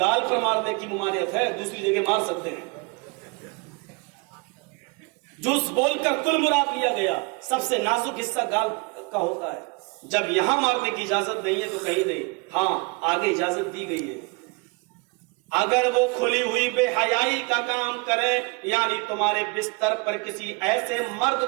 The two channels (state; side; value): quieter; left; 30.1 dB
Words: पर मारने की मुमारियत है, दूसरी जगह मार सकते हैं। जूस बोलकर कुल मुराद लिया गया। सबसे नाजुक हिस्सा गाल का होता है। जब यहां मारने की इजाजत नहीं है तो कहीं नहीं, हाँ आगे इजाजत दी गई है। अगर वो खुली हुई बेहयाई का काम करे, यानी तुम्हारे बिस्तर पर किसी ऐसे मर्द